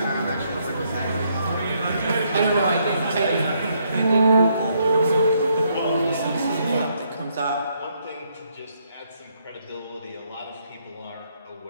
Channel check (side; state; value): both; inverted; correlation -0.73